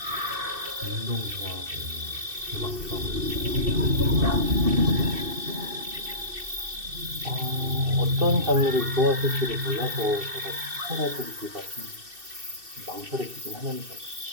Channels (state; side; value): late; left; 2.6 ms